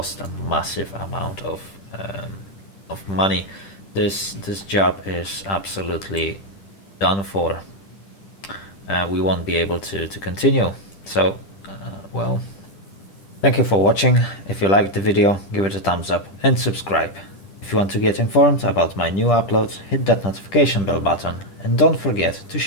a massive amount of money. This job is absolutely done for. We won't be able to continue. So, well, thank you for watching. If you liked the video, give it a thumbs up and subscribe. If you want to get informed about my new uploads, hit that notification bell button and don't forget to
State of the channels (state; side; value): late; right; 10 ms